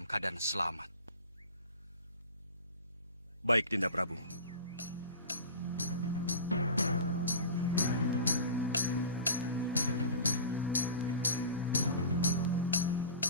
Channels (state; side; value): inverted; both; correlation -0.37